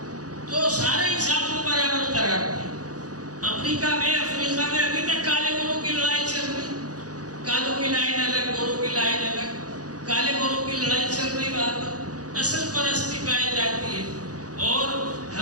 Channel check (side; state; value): left; late; 0.67 ms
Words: تو سارے انسان کو برابر قرار دیا۔ افریقہ میں ابھی تک کالے گوروں کی لڑائی چل رہی، کالوں کی لائن الگ، گوروں کی لائن الگ، کالے گوروں کی لڑائی چل رہی، وہاں پر نسل پرستی پائی جاتی ہے۔ اور